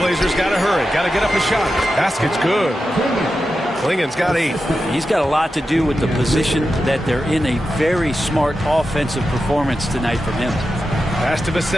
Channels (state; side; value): normal; both; correlation 0.90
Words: got to hurry. Got to get up a shot. Basket's good. Klingon's got 8. He's got a lot to do with the position that they're in. A very smart offensive performance tonight from him. Pass to